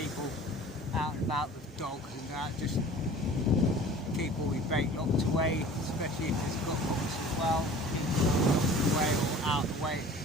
out and about with dogs and that, just keep all your bait locked away, especially if it's got hooks as well, keep them locked away or out of the way,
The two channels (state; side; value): normal; both; correlation 0.44